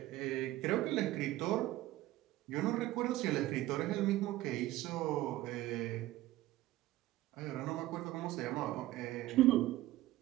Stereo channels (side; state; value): left; quieter; 16.2 dB